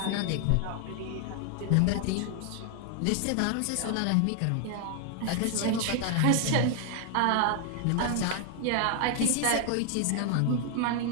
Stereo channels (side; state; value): both; different; correlation 0.00